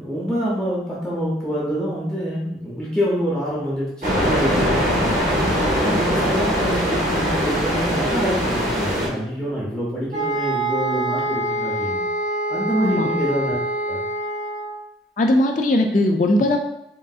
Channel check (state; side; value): normal; both; correlation 0.55